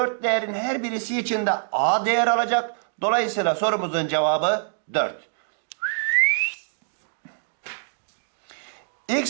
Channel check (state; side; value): silent; left; digital silence